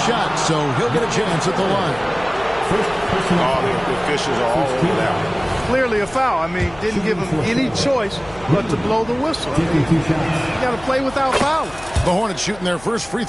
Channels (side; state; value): left; noise; hum, 20 dB below the sound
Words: so he'll get a chance at the line. The officials are all over that. Clearly a foul. I mean, didn't give him any choice but to blow the whistle. I mean, you got to play without fouling. The Hornets shooting their first free